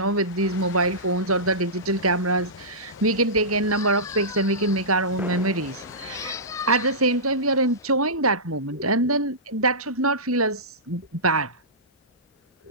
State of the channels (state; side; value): normal; both; correlation -0.19